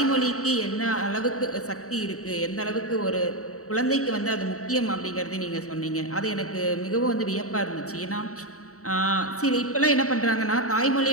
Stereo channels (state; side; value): late; right; 0.65 ms